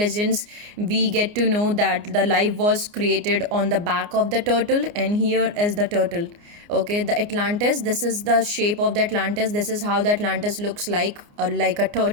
we get to know that the life was created on the back of the turtle, and here is the turtle, okay. The Atlantis, this is the shape of the Atlantis, this is how the Atlantis looks like a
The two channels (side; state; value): left; late; 29 ms